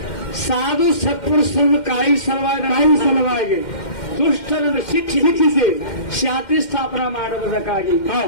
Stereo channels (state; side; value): late; right; 2.1 ms